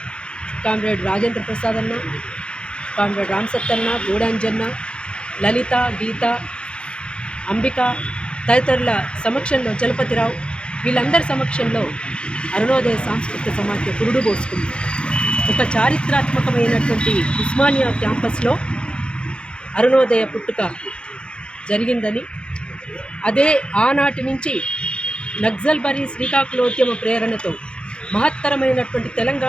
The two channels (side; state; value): right; late; 0.055 ms